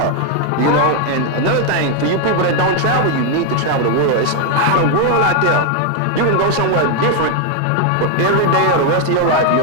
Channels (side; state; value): both; different; correlation 0.01